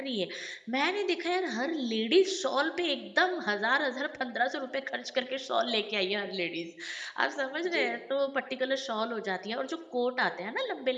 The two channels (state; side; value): identical; both; correlation 1.00